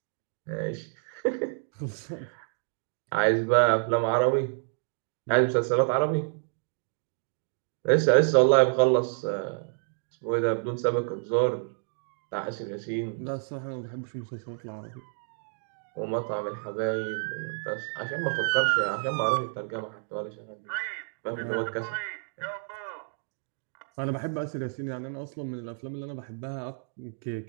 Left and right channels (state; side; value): silent; left; digital silence